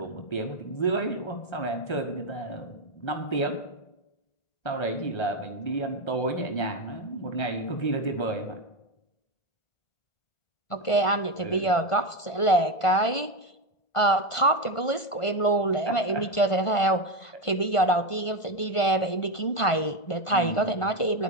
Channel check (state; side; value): late; right; 1.5 ms